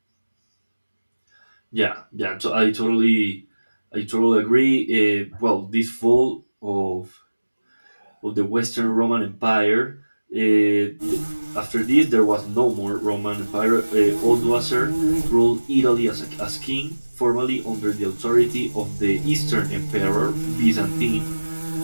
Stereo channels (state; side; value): inverted; both; correlation -1.00